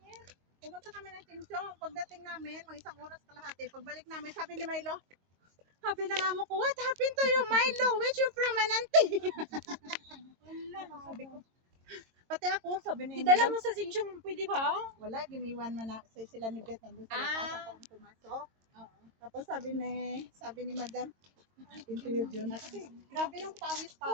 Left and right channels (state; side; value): late; left; 22 ms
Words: Pumunta kami ng Tinsong. Pagdating namin, mga isang oras kalahati. Pagbalik namin, sabi ni Milo, sabi ng amo ko, what happened to you, Milo? Where's your permanente? Wala, sabi ko. Pati ako, sabi ni Idala mo sa Sinchong, pwede ba? wala, giniwan man na sila ni Beth nandun sa lakas ako ang pumasok. Oo. Tapos sabi ni Madam, interview yun. Kasi grabe yung pawis